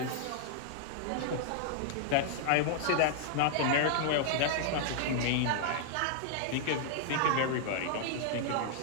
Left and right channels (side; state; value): both; different; correlation 0.00